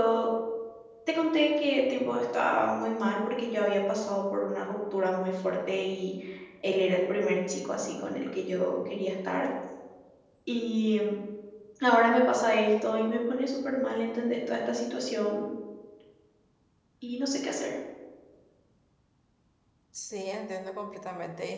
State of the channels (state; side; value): identical; both; correlation 1.00